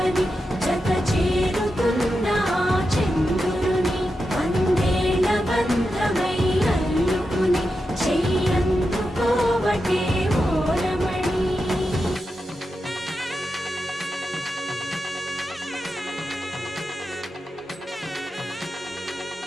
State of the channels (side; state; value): both; normal; correlation 0.89